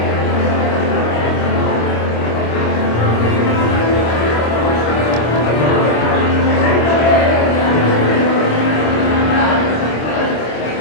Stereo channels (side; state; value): right; late; 25 ms